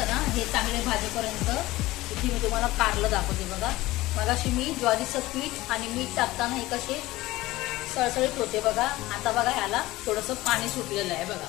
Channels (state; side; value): quieter; right; 18.3 dB